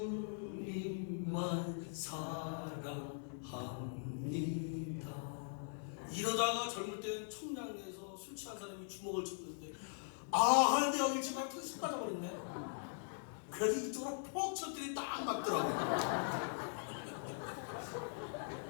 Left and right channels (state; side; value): silent; right; digital silence